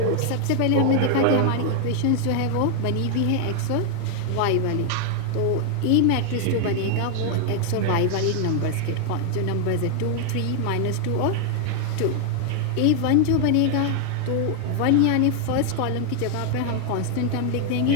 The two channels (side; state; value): both; different; correlation 0.00